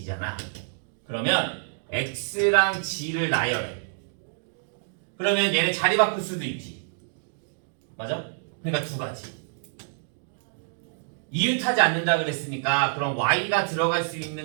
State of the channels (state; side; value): silent; left; digital silence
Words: 그러면 x랑 g를 나열해. 그러면 얘네 자리 바꿀 수도 있지. 맞아? 그러니까 두 가지. 이웃하지 않는다 그랬으니까 그럼 y가 들어갈 수